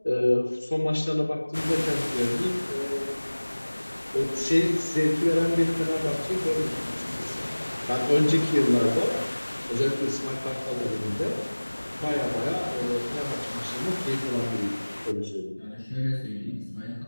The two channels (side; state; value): both; inverted; correlation -1.00